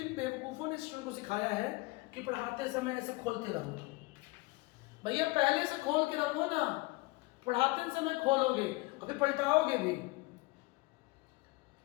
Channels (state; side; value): quieter; right; 23.3 dB